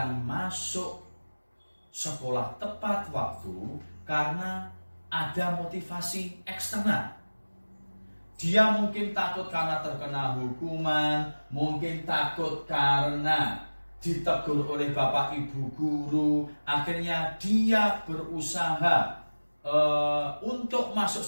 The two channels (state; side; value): inverted; both; correlation -1.00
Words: masuk sekolah tepat waktu karena ada motivasi eksternal. Dia mungkin takut karena terkena hukuman, mungkin takut karena ditegur oleh bapak ibu guru. Akhirnya dia berusaha untuk masuk